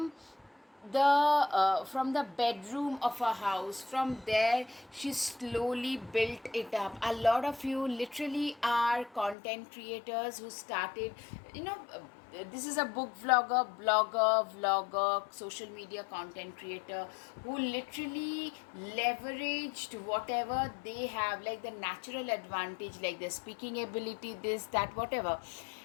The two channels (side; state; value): right; drops out; at 9.3 s